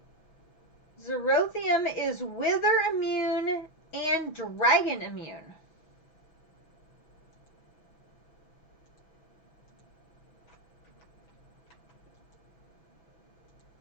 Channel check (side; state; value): right; late; 6.0 ms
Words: Zerothium is wither immune and dragon immune.